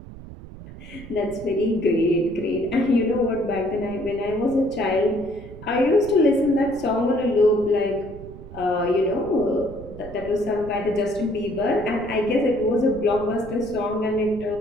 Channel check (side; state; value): right; noise; rumble, 15 dB below the sound